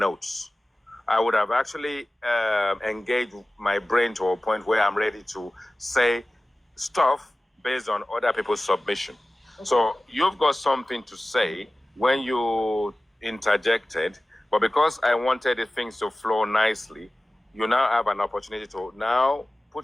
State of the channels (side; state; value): both; normal; correlation 0.97